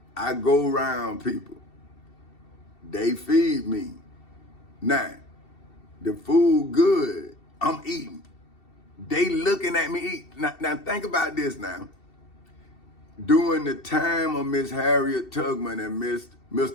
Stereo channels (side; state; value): right; late; 2.7 ms